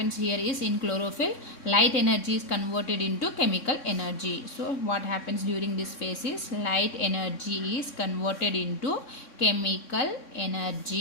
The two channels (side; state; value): right; late; 3.6 ms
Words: here is, in chlorophyll, light energy is converted into chemical energy. So what happens during this phase is light energy is converted into chemical